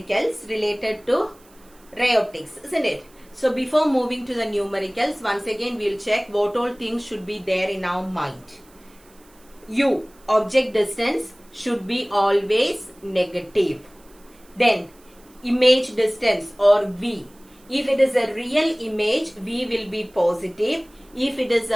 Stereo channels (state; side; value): noise; right; hiss, 29 dB below the sound